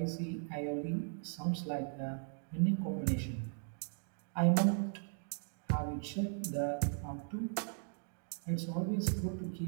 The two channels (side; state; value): left; silent; 53 dB below the other